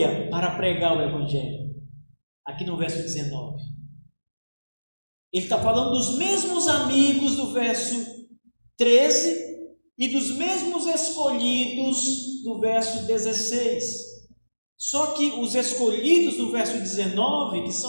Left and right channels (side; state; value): both; inverted; correlation -1.00